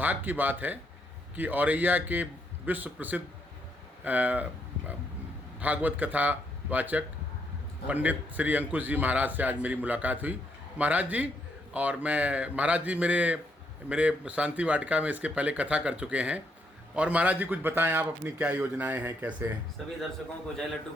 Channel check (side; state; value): both; normal; correlation 0.75